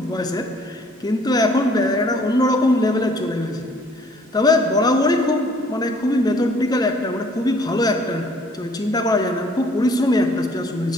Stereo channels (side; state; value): both; normal; correlation 0.58